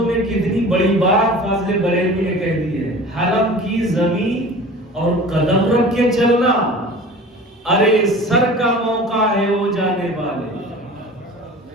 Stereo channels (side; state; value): both; normal; correlation 0.40